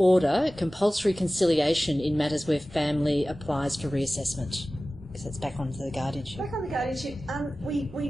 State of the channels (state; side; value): normal; both; correlation 0.97